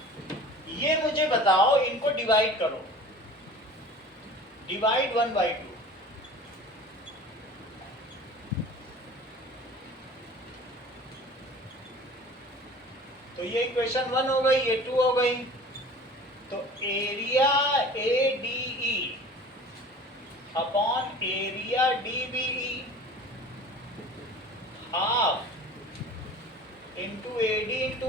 ये मुझे बताओ, इनको डिवाइड करो, डिवाइड 1/2। तो ये इक्वेशन 1 हो गई, ये 2 हो गई। तो area ADE upon area DBE half into AD into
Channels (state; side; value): normal; both; correlation 0.42